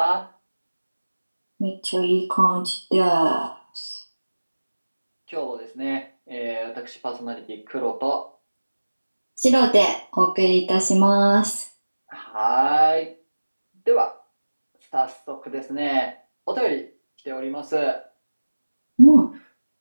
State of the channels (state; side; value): inverted; both; correlation -1.00